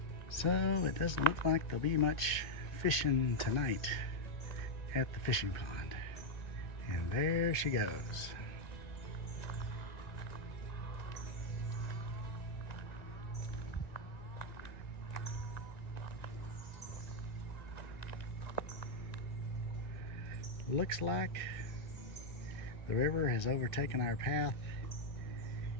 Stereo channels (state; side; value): late; right; 2.1 ms